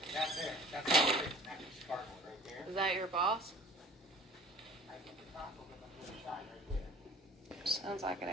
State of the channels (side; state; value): both; normal; correlation 0.46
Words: That there. That's all it is. That's just cardboard right there. Is that your boss? I get the top of it on the other side right there. Sounds like an